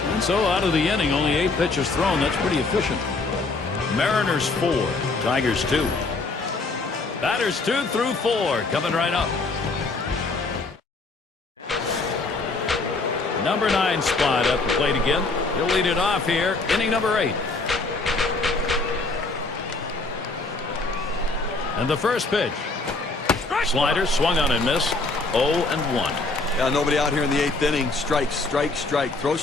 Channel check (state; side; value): quieter; right; 3.6 dB